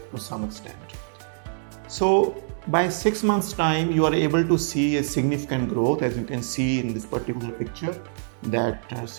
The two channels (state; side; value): silent; left; 62 dB below the other